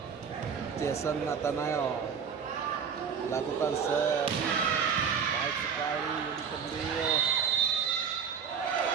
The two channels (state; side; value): quieter; left; 6.8 dB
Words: Jason Nathanael lakukan serve baik sekali di Kendil.